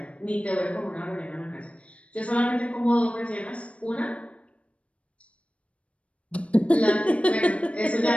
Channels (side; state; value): right; late; 0.062 ms